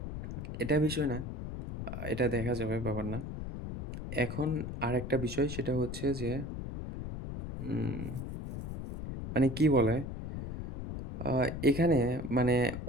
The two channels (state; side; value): noise; left; rumble, 5 dB below the sound